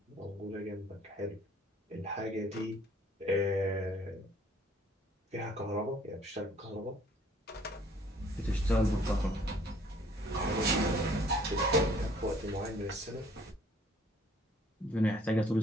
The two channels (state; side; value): normal; both; correlation 0.58